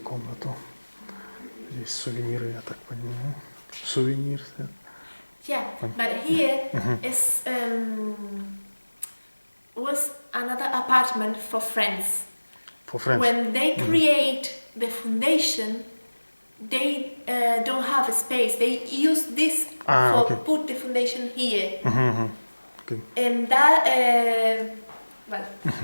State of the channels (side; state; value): both; inverted; correlation -1.00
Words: Здесь сувениры, я так понимаю. Сувенир. Yeah, but here is was another apartment for friends. For friends. When they create the foundation, they don't have a space. They use this for okay. put the foundation here, Okay. and that well,